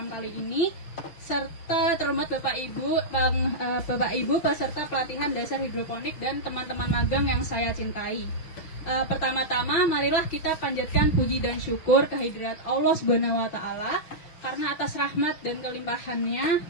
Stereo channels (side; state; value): right; late; 6.3 ms